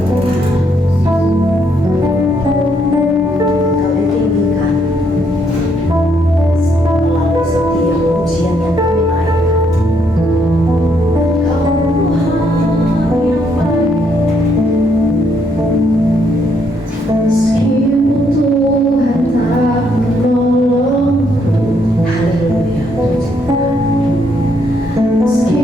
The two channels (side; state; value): both; normal; correlation 0.72